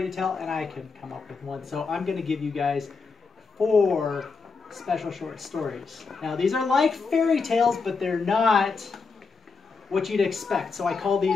to tell, and I couldn't come up with one. So I'm going to give you guys 4 special short stories. Now, these are like fairy tales, but they're not what you'd expect. So I call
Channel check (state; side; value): quieter; right; 4.7 dB